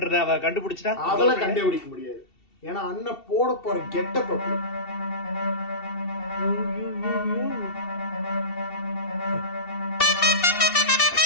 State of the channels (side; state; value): right; late; 2.7 ms